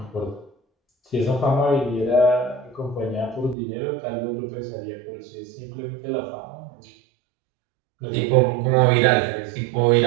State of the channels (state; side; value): drops out; left; at 3.6 s